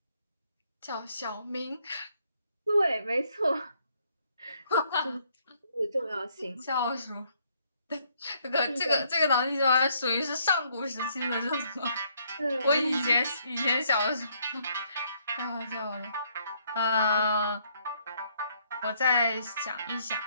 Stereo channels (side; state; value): both; inverted; correlation -0.69